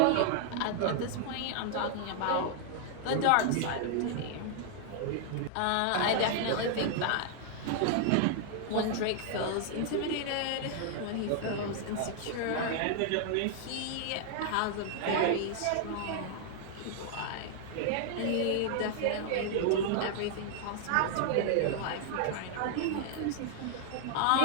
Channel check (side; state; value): both; different; correlation 0.00